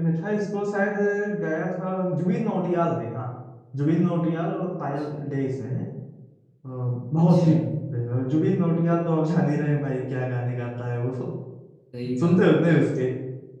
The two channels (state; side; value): identical; both; correlation 1.00